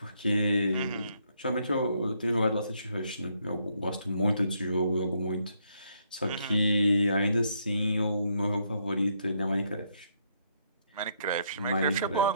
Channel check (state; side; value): inverted; both; correlation -0.73